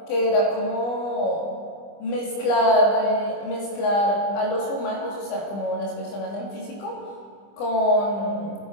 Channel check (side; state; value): right; late; 25 ms